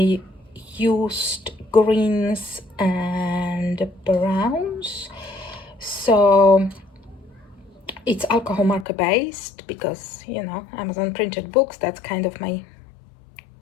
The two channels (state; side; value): drops out; right; at 8.8 s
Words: used greens and browns. So it's alcohol marker based because, you know, Amazon printed books, that's kind of my